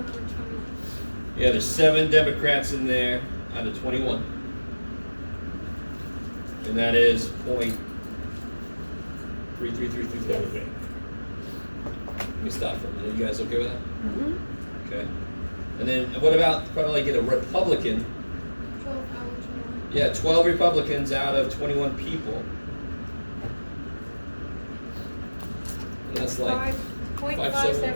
Yeah, there's 7 Democrats in there out of 21. And that is 0.3333. Let me stop for a minute. You guys okay with that? Mm-hmm. Okay. And then what about probably get a Republican? 12 out of 21. Yeah, 12 Republicans out of 21 people. And that's like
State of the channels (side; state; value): both; inverted; correlation -1.00